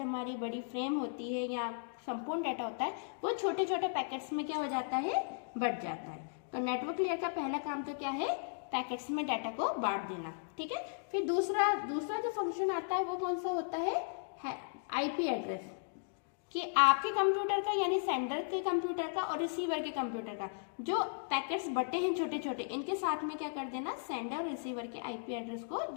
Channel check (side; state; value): right; silent; digital silence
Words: हमारी बड़ी फ्रेम होती है या संपूर्ण डेटा होता है वो छोटे छोटे पैकेट्स में क्या हो जाता है, बढ़ जाता है। तो नेटवर्क लेयर का पहला काम तो क्या है, पैकेट्स में डाटा को बांट देना। ठीक है, फिर दूसरा जो फंक्शन आता है वो कौन सा होता है आईपी एड्रेस। कि आपके कंप्यूटर का यानी सेंडर के कंप्यूटर का और रिसीवर के कंप्यूटर का जो पैकेट्स बटे हैं छोटे छोटे, इनके साथ में क्या कर देना, सेंडर और रिसीवर के आईपी एड्रेस को